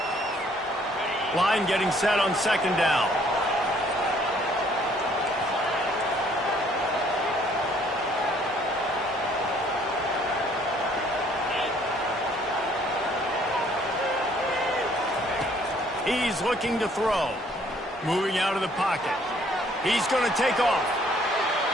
Line getting set on 2nd down. He's looking to throw. Moving out of the pocket. He's going to take off.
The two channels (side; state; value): both; normal; correlation 0.62